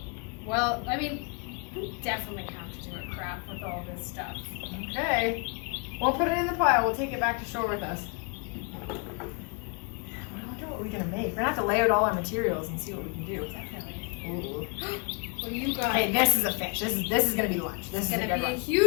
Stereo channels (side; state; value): right; quieter; 34.8 dB